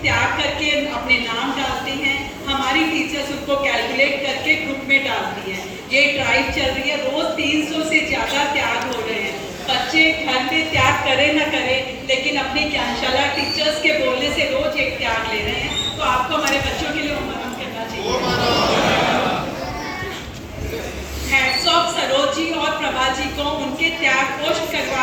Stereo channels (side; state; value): both; identical; correlation 1.00